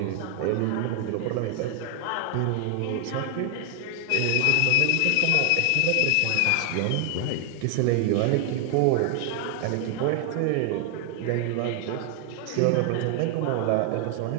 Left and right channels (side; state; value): both; different; correlation 0.00